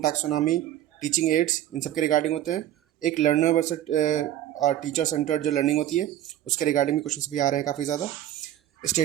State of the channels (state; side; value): quieter; left; 12.5 dB